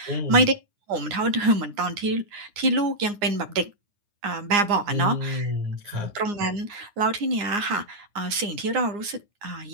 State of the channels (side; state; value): left; late; 9.7 ms